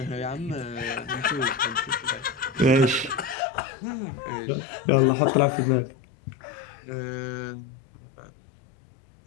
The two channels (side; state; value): right; drops out; at 3.4 s